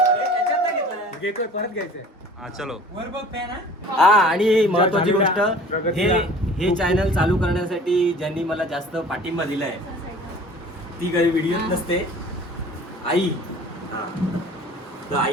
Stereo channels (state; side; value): normal; both; correlation 0.46